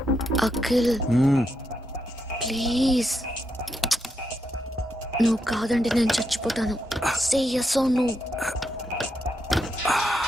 అఖిల్ ప్లీజ్, నువ్వు కాదంటే నేను చచ్చిపోతాను. సే yes or no.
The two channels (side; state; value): both; normal; correlation 0.82